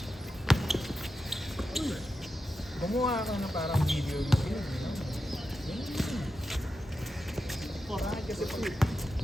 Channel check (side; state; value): both; normal; correlation 0.90